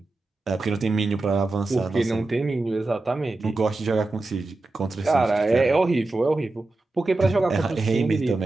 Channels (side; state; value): left; quieter; 3.1 dB